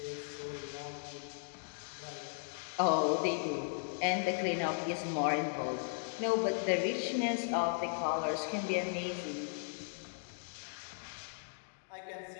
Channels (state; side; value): silent; right; digital silence